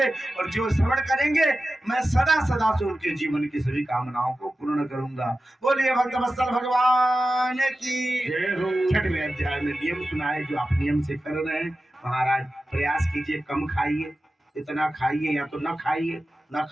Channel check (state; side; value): normal; both; correlation 0.93